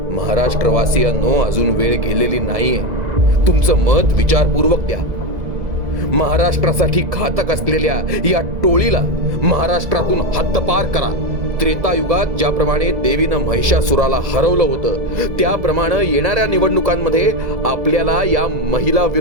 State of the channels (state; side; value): late; left; 2.0 ms